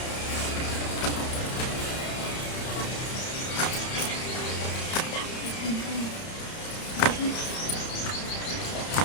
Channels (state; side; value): late; right; 31 ms